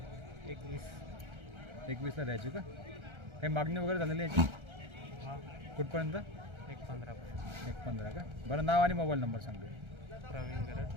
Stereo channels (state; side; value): late; left; 1.3 ms